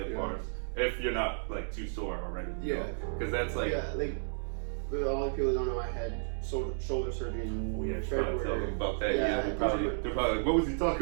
bars, if you're not like too sore already. Yeah. Because that's like. Yeah, like, with all the people that don't know, I had shoulder surgery in Oh yeah, try to tell them February. about that. Yeah, Yeah, they're probably like, what was he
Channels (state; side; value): silent; left; 56 dB below the other